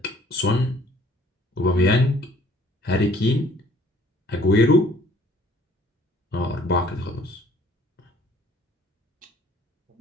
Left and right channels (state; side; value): normal; both; correlation 0.58